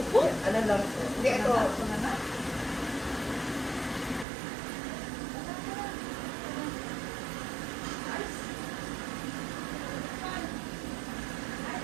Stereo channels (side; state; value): left; drops out; at 4.2 s